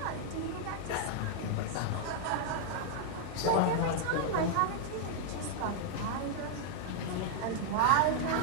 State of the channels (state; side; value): different; both; correlation 0.00